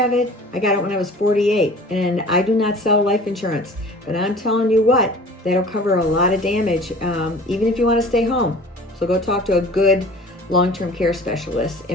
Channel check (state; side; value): normal; both; correlation 0.44